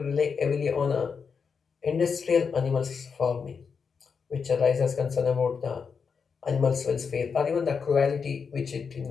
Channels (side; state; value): right; quieter; 5.8 dB